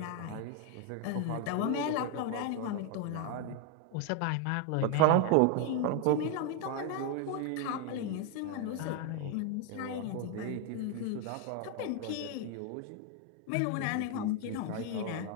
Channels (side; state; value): both; different; correlation 0.01